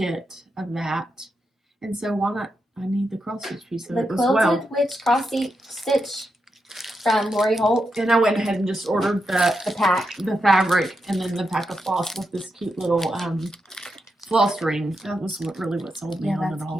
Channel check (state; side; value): normal; both; correlation 0.85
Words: of that, and so why not? I need the cross stitch piece of The it as Quilted well. Witch cross stitch from Lori Holt. And I went ahead and just ordered the pack, the fabric, and then the pack of floss with this cute little floss ring. That was what sold me on it